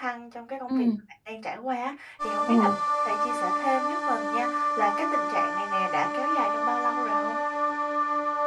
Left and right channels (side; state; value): both; identical; correlation 1.00